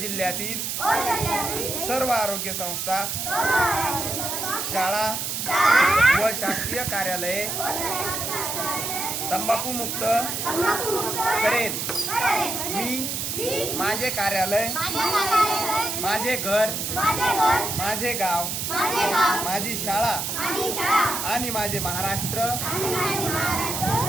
जिल्ह्यातील सर्व आरोग्य संस्था, शाळा व शासकीय कार्यालये तंबाखू मुक्त करेन. मी माझे कार्यालय, माझे घर, माझे गाव, माझी शाळा आणि माझे महाराष्ट्र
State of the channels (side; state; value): right; noise; hiss, 3 dB below the sound